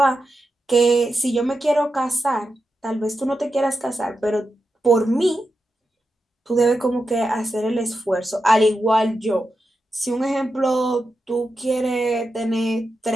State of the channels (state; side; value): normal; both; correlation 0.89